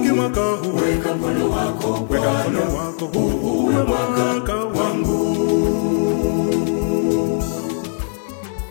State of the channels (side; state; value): right; silent; digital silence